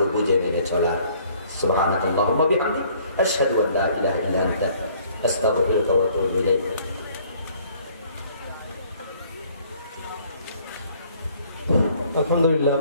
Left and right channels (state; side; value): inverted; both; correlation -0.59